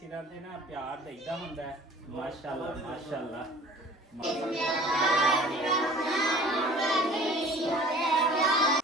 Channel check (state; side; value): normal; both; correlation 0.47